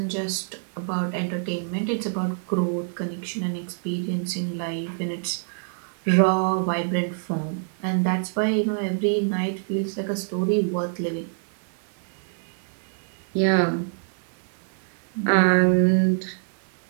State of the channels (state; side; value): silent; left; 60 dB below the other